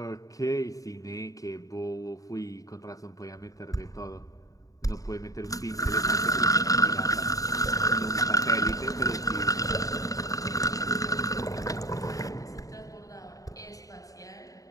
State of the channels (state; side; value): late; right; 0.17 ms